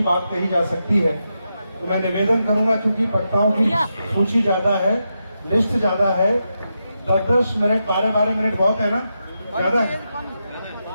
बात कही जा सकती है, तो मैं निवेदन करूंगा क्योंकि वक्ताओं की सूची ज्यादा है, लिस्ट ज्यादा है, 10-10 मिनट 12-12 मिनट बहुत है ना, ज्यादा है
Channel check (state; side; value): inverted; both; correlation -0.86